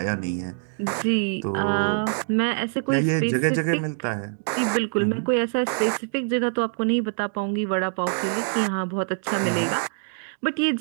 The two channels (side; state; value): left; silent; digital silence